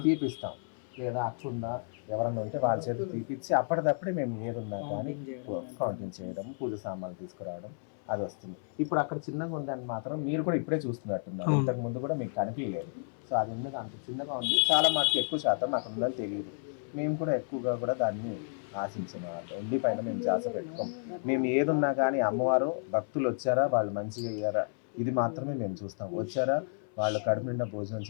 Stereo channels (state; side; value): silent; right; 57 dB below the other